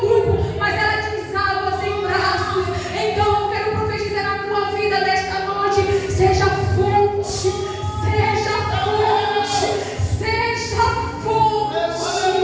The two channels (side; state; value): both; identical; correlation 1.00